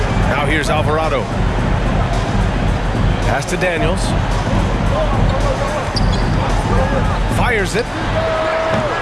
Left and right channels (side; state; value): both; identical; correlation 1.00